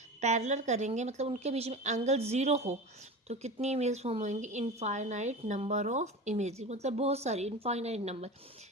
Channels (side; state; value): both; normal; correlation 0.30